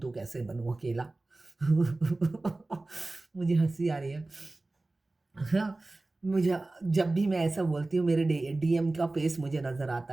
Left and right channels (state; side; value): quieter; left; 3.0 dB